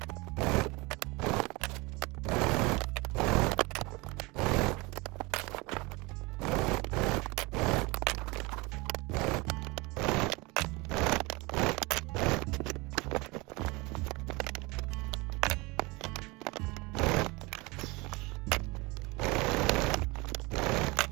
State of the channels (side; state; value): left; quieter; 25.0 dB